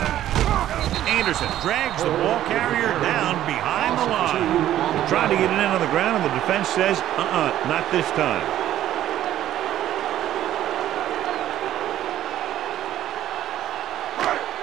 Anderson drags the ball carrier down behind the line. They're trying to get it in on the ground, and the defense says, not this time.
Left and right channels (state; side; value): quieter; left; 12.4 dB